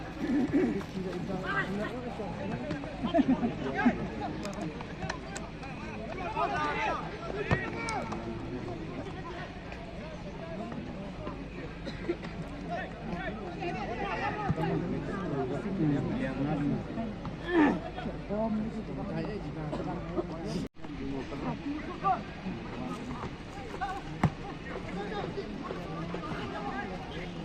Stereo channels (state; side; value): identical; both; correlation 1.00